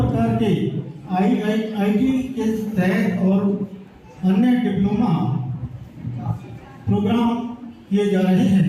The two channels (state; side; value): identical; both; correlation 1.00